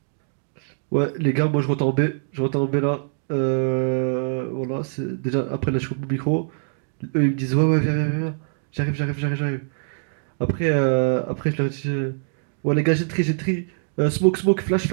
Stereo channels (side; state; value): left; silent; digital silence